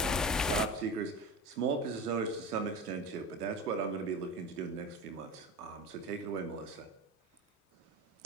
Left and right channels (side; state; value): both; normal; correlation 0.29